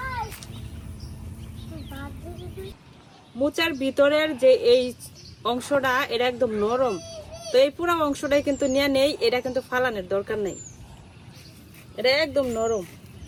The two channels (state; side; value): identical; both; correlation 1.00